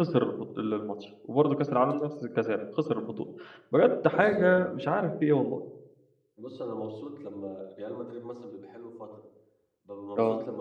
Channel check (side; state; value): both; identical; correlation 1.00